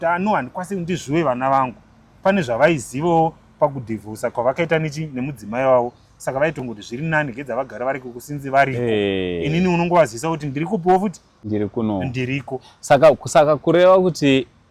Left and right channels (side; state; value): both; identical; correlation 1.00